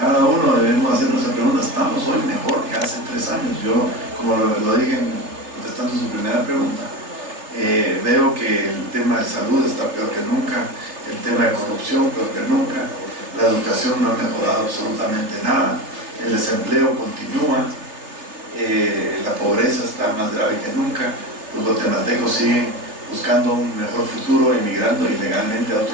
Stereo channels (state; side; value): late; left; 3.3 ms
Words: uno debemos hacernos esa pregunta: ¿estamos hoy mejor que hace 3 años? Yo, como lo dije contestando su primera pregunta, veo que el tema de salud está peor que nunca, el tema de corrupción peor que nunca, la educación no ha mejorado absolutamente nada, el desempleo continúa, la pobreza está más grave que nunca, los guatemaltecos siguen buscando un mejor futuro, emigrando ilegalmente a